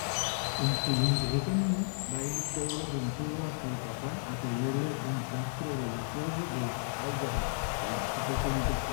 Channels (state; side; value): silent; right; 56 dB below the other